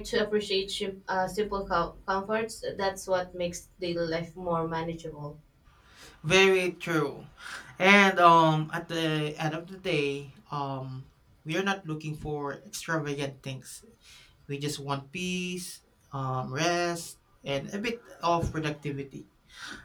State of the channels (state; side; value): identical; both; correlation 1.00